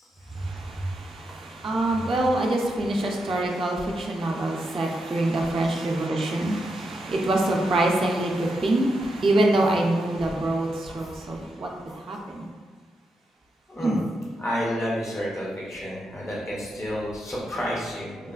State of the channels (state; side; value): normal; both; correlation 0.84